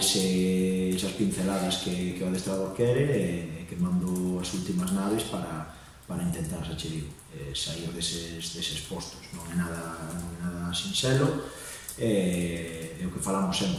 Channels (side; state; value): both; identical; correlation 1.00